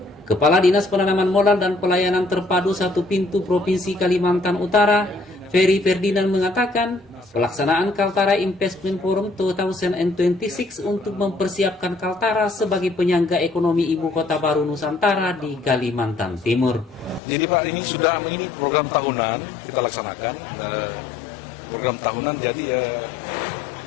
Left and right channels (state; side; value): drops out; right; at 17.2 s